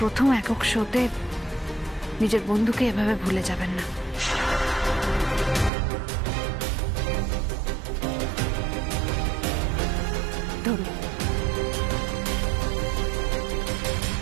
একক শোতে নিজের বন্ধুকে এভাবে ভুলে যাবেন না। ধরুন।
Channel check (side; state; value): left; drops out; at 5.7 s